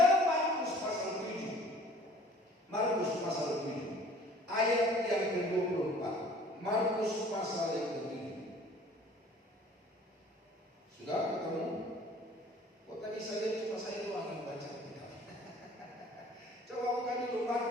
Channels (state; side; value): normal; both; correlation 0.51